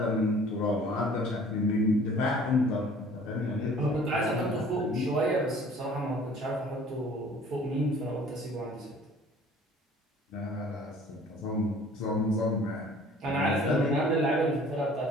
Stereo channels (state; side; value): normal; both; correlation 0.51